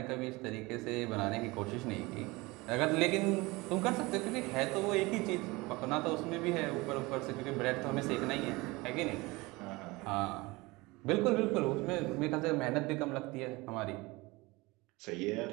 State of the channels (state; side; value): quieter; left; 23.0 dB